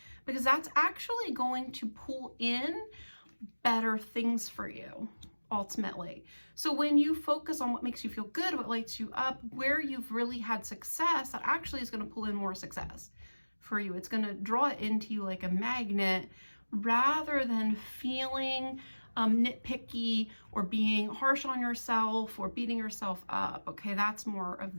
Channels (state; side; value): inverted; both; correlation -1.00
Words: because that's actually going to pull in better things for you ultimately. So when you focus on what makes you feel good, what lights you up, where you've really had success, that actually is going to pull in more success for you. It's going to draw it into you like a magnet, rather than feeling nitpicky or being harsh on yourself or beating yourself up. Okay, that's more of